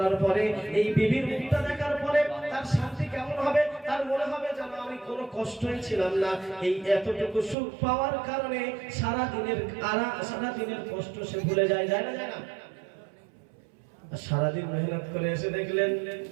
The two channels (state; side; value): drops out; left; at 7.6 s